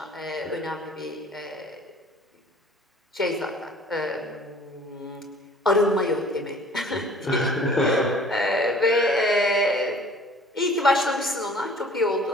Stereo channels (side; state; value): both; normal; correlation 0.50